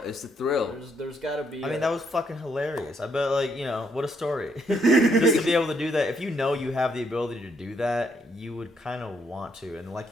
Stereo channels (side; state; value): both; normal; correlation 0.73